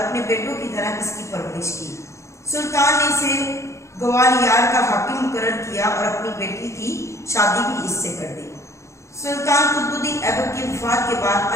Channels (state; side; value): late; right; 0.14 ms